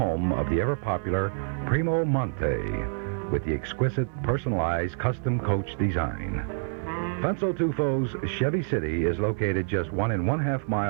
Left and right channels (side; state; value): left; silent; digital silence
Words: of the ever-popular Primo Monte with the exquisite personalized custom coach design. Fenso Tufo's Chevy City is located just 1.5